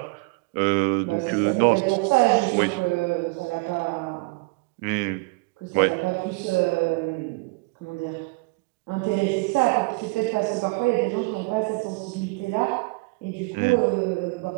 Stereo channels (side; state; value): left; quieter; 27.5 dB